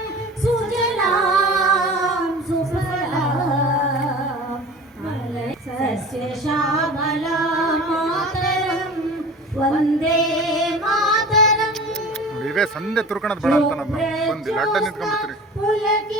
ಸುಜಲಾಂ ಸುಫಲಾಂ ಸಸ್ಯ ಶ್ಯಾಮಲಾಂ ಮಾತರಂ ವಂದೇ ಮಾತರಂ. ಇವೇ ಸಂದೆ ತುರ್ಕಣದ ಬೇಡ ಅಂತ ನಾನು ಬಂದಿಲ್ಲ, ಅಡ್ಡ ನಿಂತ್ಕೊಂಡ್ಬಿಡ್ತೀನಿ.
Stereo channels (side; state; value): both; normal; correlation 0.38